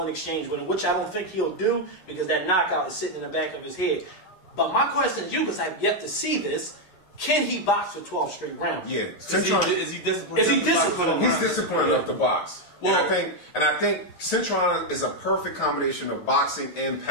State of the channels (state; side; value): late; right; 11 ms